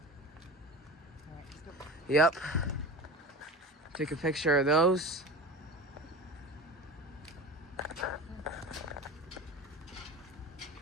Yep. Take a picture of those.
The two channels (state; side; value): normal; both; correlation 0.33